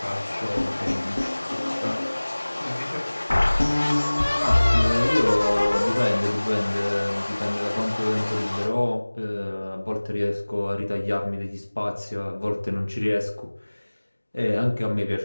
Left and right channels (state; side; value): inverted; both; correlation -1.00